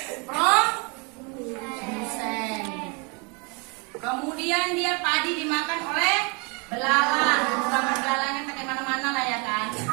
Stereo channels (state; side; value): quieter; left; 32.1 dB